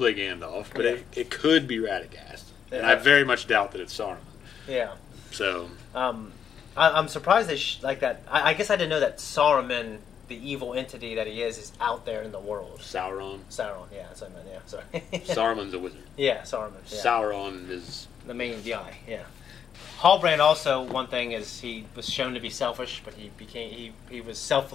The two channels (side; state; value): right; quieter; 8.0 dB